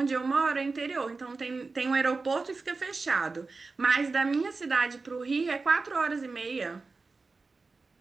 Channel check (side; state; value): left; quieter; 4.0 dB